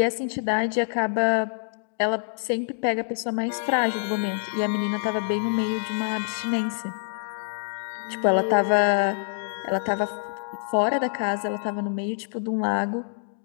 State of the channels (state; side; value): silent; right; digital silence